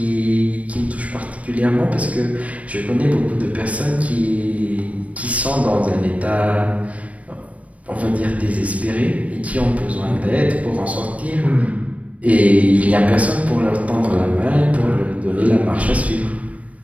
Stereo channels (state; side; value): late; left; 0.066 ms